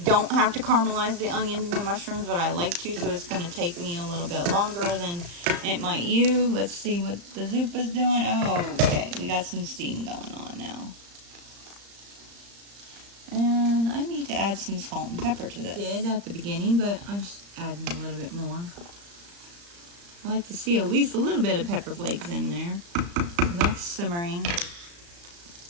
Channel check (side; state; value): left; late; 35 ms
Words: don't have to caramelize the onions and the mushrooms, but I like to, so it's going to take me a little bit longer than it might you. Let's see what the Zuppa's doing. Oh, okay. We got some steam going on now. And I need to add some salt and pepper to this. I did at the beginning, but I'm just adding a little bit more. I like to see at least a little bit of pepper flakes in there. So that's simmering.